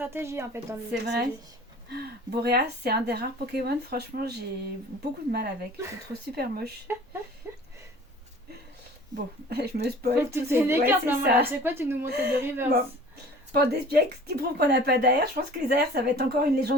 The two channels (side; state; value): both; normal; correlation 0.45